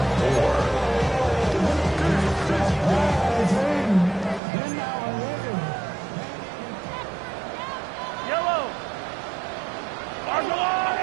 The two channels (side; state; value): left; drops out; at 4.4 s